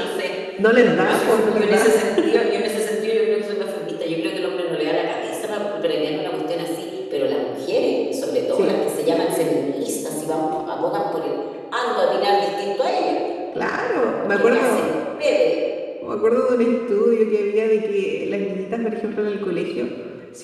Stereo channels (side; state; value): both; identical; correlation 1.00